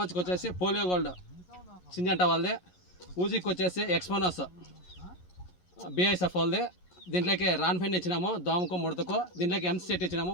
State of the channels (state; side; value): late; right; 11 ms